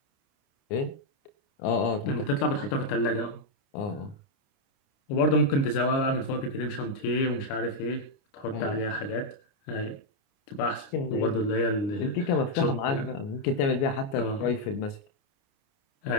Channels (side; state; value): right; late; 29 ms